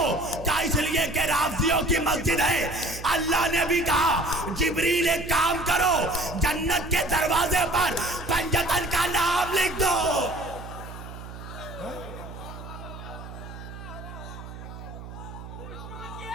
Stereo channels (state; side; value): noise; right; hum, 12 dB below the sound